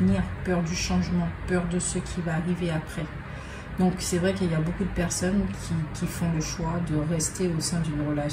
peur du changement, peur de ce qui va arriver après. Donc c'est vrai qu'il y a beaucoup de personnes qui font le choix de rester au sein d'une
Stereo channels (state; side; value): identical; both; correlation 1.00